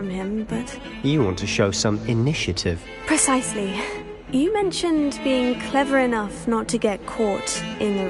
him, but... You want to show some initiative. Precisely. You mentioned being clever enough not to get caught in the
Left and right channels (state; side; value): identical; both; correlation 1.00